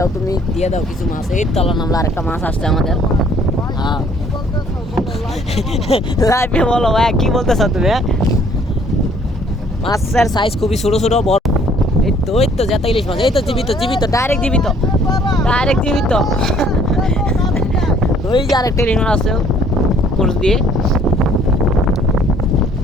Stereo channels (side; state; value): both; normal; correlation 0.60